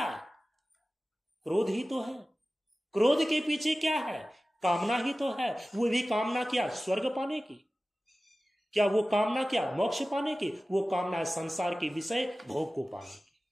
क्रोध ही तो है। क्रोध के पीछे क्या है? कामना ही तो है। वो भी कामना क्या? स्वर्ग पाने की। क्या वो कामना क्या? मोक्ष पाने की। वो कामना है संसार के विषय भोग को पाने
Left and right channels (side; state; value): both; normal; correlation 0.96